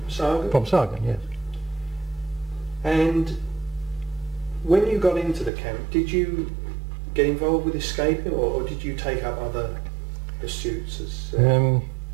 Sagan? From Sagan, yes. And when you got into the camp, did you get involved with escaping, or did you take up other pursuits?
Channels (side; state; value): left; drops out; at 5.5 s